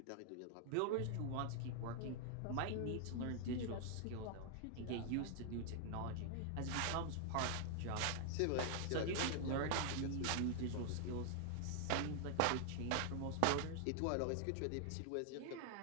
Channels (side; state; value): both; different; correlation 0.00